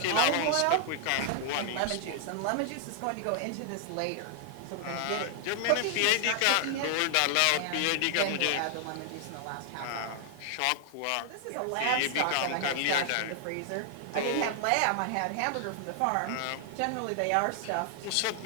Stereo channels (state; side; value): different; both; correlation 0.00